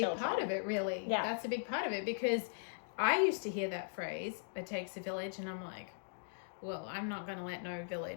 part of it, really. That's a big part of it, because I used to hear that phrase, it takes a village, and I'm like, well, I'm not going to let no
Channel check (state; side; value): silent; right; digital silence